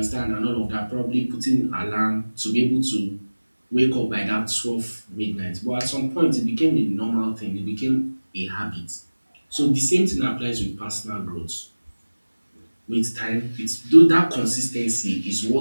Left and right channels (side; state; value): both; inverted; correlation -1.00